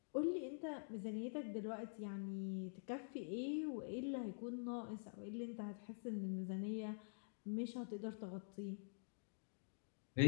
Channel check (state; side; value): silent; right; digital silence